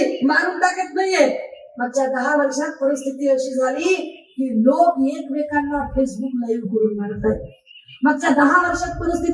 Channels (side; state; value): both; identical; correlation 1.00